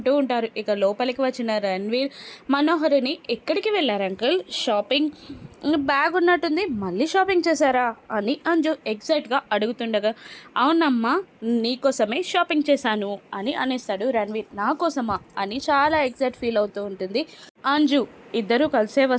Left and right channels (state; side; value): identical; both; correlation 1.00